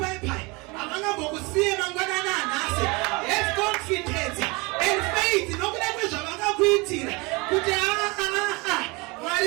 havangambokusiye mangwanani anhasi. Have confidence and faith nokuda kwezvavakakuitira kuti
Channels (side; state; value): left; quieter; 26.5 dB